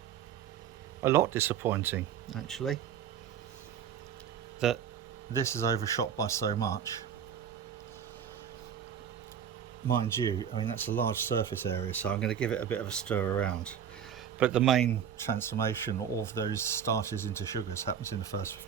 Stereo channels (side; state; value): left; quieter; 8.4 dB